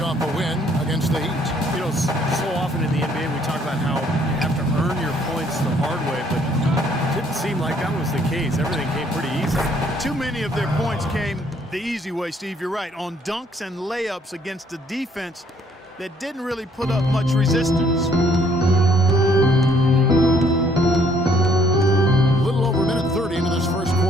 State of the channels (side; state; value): both; normal; correlation 0.64